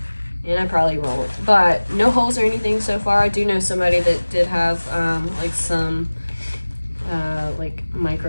and I probably won't, but no holes or anything so far. I do know somebody that did have like some like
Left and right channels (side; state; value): both; inverted; correlation -1.00